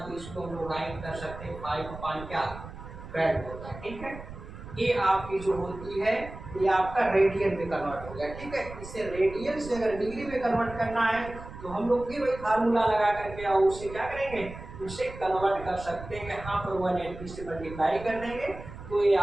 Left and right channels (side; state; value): right; noise; rumble, 13 dB below the sound